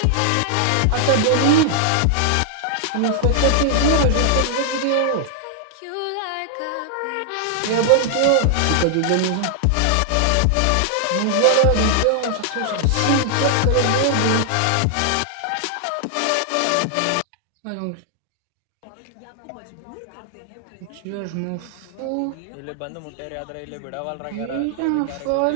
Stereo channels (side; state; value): both; different; correlation 0.00